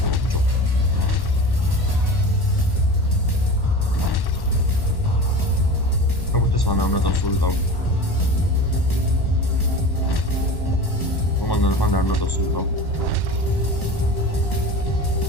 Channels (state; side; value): late; right; 1.1 ms